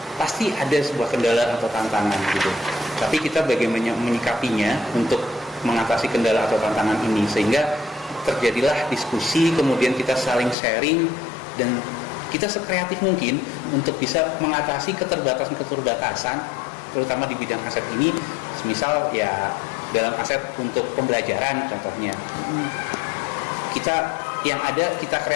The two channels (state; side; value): drops out; right; at 10.6 s